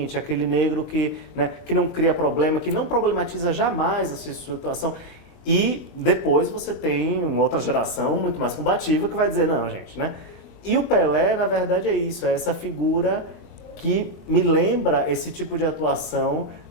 aquele negro que, né, que não cria problema, que não problematiza jamais a sua situação. E depois você tem uma outra geração muito mais combativa que vai dizer, não, gente, né? E o Pelé, na verdade, é isso, é essa figura que me lembra esse tipo de atuação,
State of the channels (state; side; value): late; right; 22 ms